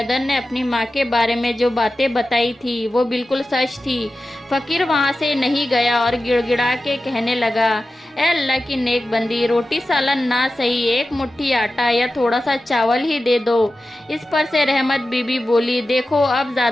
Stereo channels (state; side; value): normal; both; correlation 0.93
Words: نے اپنی ماں کے بارے میں جو باتیں بتائی تھی وہ بالکل سچ تھی۔ فقیر وہاں سے نہیں گیا اور گڑ گڑا کے کہنے لگا، اے اللہ کی نیک بندی، روٹی سالن نہ صحیح، ایک مٹھی آٹا یا تھوڑا سا چاول ہی دے دو۔ اس پر سے رحمت بی بی بولی، دیکھو اب